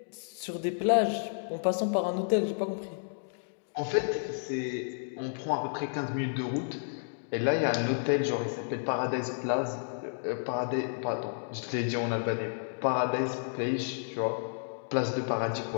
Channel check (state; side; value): silent; right; digital silence